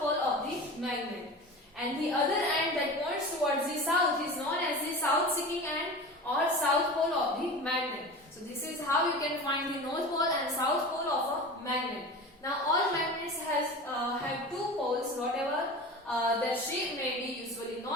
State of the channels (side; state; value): both; normal; correlation 0.33